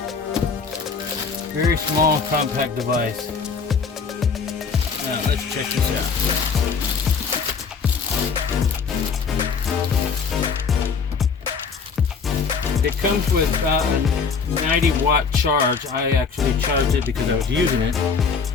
Very small, compact device. Now let's check this out. It comes with about a 90 watt charge. I actually charged it because I was using it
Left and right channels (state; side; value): quieter; right; 5.5 dB